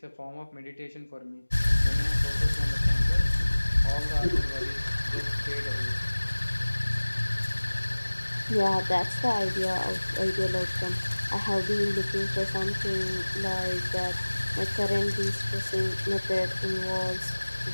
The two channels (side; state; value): both; inverted; correlation -1.00